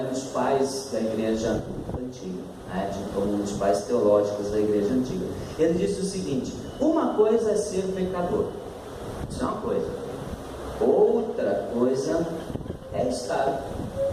dos pais da igreja antiga, um dos pais teológicos da igreja antiga. Ele disse o seguinte: uma coisa é ser pecador, isso é uma coisa. Outra coisa é estar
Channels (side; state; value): both; identical; correlation 1.00